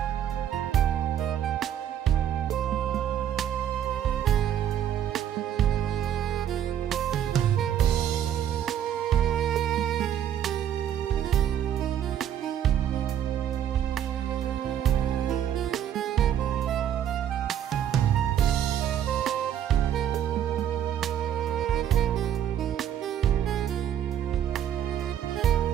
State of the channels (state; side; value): quieter; left; 10.2 dB